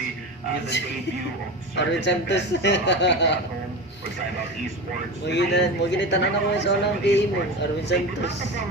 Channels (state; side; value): noise; right; rumble, 29 dB below the sound